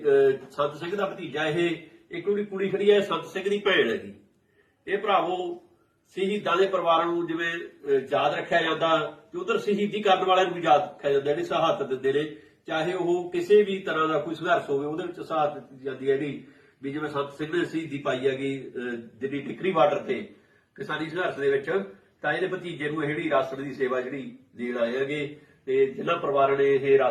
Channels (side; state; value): both; identical; correlation 1.00